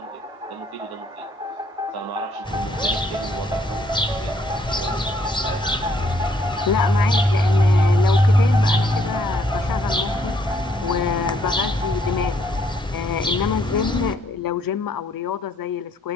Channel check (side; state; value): both; normal; correlation 0.69